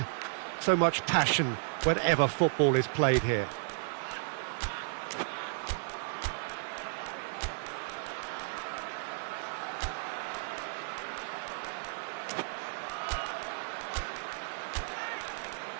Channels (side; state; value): left; silent; digital silence